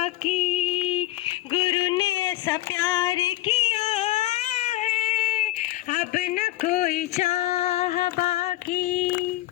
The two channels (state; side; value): quieter; right; 16.4 dB